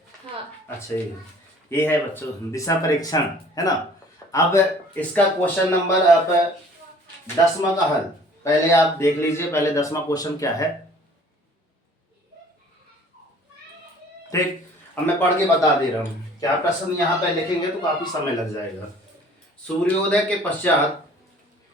हाँ। अच्छा, ये है बच्चों दिशा परीक्षण, है ना। अब इसका क्वेश्चन नंबर आप 10वां का हल पहले आप देख लीजिए। पहले 10वां क्वेश्चन क्या है, ठीक। अब मैं पढ़ के बता दे रहा हूँ। क्या प्रश्न यहाँ पे लिखेंगे तो काफी समय लग जाएगा। सूर्योदय के पश्चात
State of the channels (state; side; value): normal; both; correlation 0.52